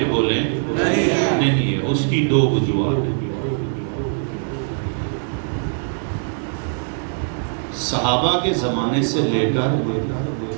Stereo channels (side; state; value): left; silent; 65 dB below the other